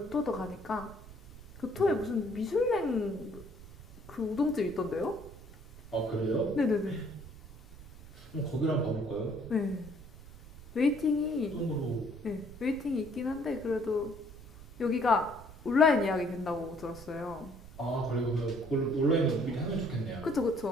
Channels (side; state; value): right; noise; rumble, 18 dB below the sound